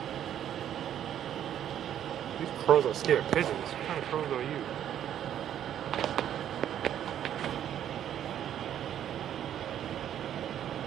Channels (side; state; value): left; quieter; 10.4 dB